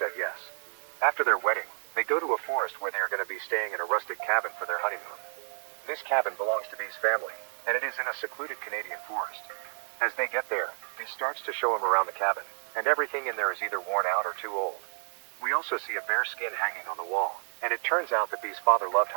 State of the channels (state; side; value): silent; left; 58 dB below the other